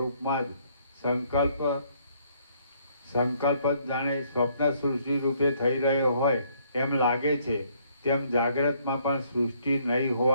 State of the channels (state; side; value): inverted; both; correlation -0.66